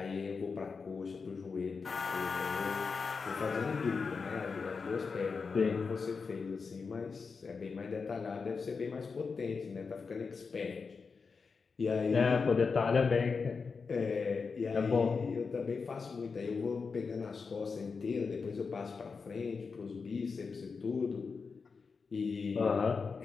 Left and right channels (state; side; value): quieter; right; 5.0 dB